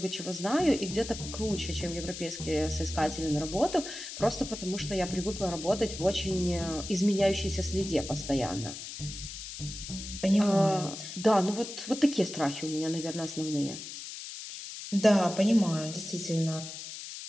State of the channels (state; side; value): noise; left; hiss, 10 dB below the sound